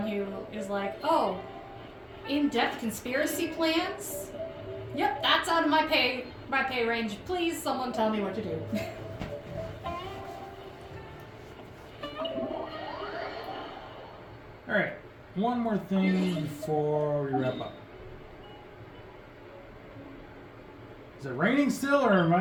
who is like, oh, in-depth conspiracy plans? Yep, that's out of my pay my pay range. Please, someone tell me what to do. Alright, one more thing before we wrap up. Is it raining still, or am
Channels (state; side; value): identical; both; correlation 1.00